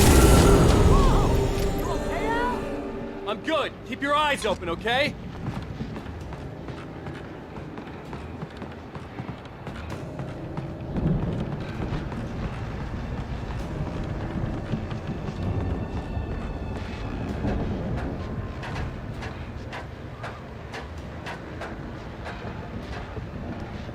I'm good. Keep your eyes open, okay?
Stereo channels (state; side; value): identical; both; correlation 1.00